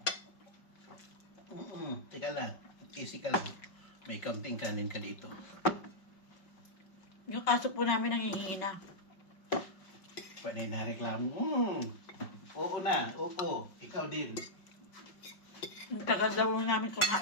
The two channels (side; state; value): right; late; 5.2 ms